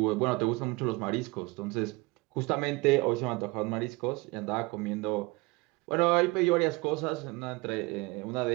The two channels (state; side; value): quieter; left; 25.0 dB